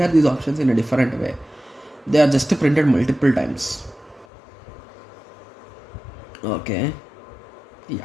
these options in a different way? They are just printed multiple times. Okay,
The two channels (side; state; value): right; drops out; at 4.2 s